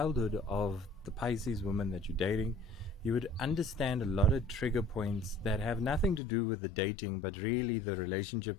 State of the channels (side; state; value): right; drops out; at 6.2 s